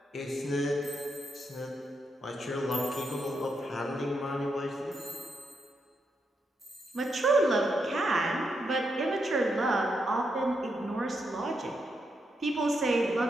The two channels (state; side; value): normal; both; correlation 0.82